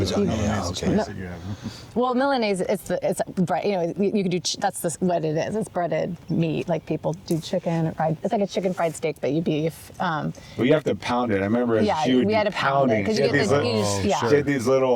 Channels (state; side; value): identical; both; correlation 1.00